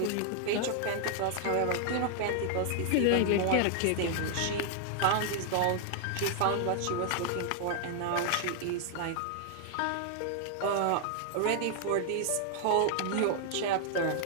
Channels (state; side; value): different; both; correlation 0.00